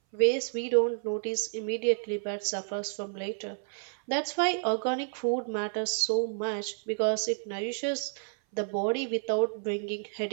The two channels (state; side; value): silent; left; 58 dB below the other